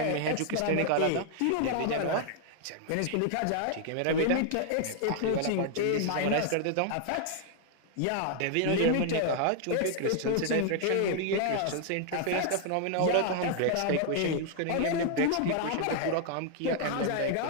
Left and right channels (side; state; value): both; different; correlation 0.00